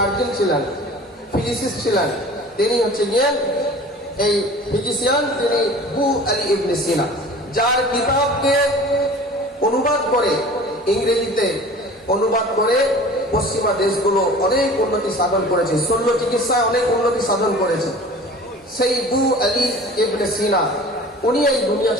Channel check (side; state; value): both; normal; correlation 0.42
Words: ছিলেন, ফিজিসিস্ট ছিলেন, তিনি হচ্ছে গিয়ে এই ফিজিশিয়ান, তিনি বু আলী ইবনে সিনা, যার কিতাবকে অনুবাদ করে ইংরেজিতে অনুবাদ করে পশ্চিমা দেশগুলো অনেক উন্নতি সাধন করেছে, শল্য চিকিৎসায় অনেক উন্নতি সাধন করেছে। সেই বু আলী ইবনে সিনা উনি এই দুনিয়া